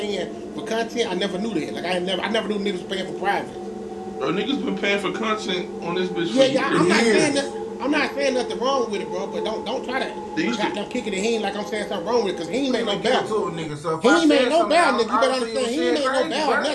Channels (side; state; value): both; identical; correlation 1.00